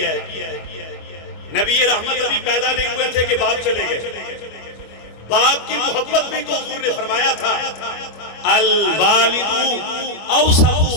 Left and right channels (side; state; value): right; late; 25 ms